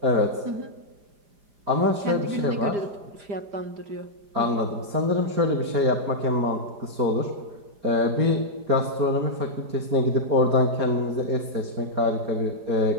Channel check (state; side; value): late; left; 4.9 ms